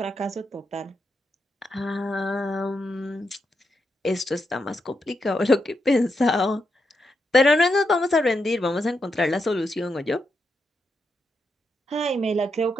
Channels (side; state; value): both; normal; correlation 0.83